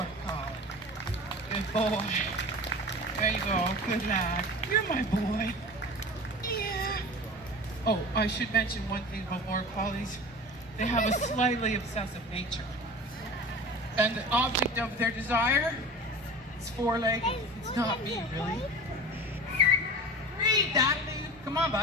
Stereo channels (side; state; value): both; normal; correlation 0.35